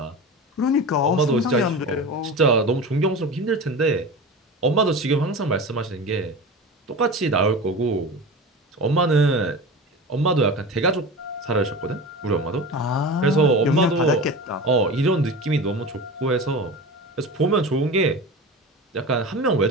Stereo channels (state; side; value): normal; both; correlation 0.30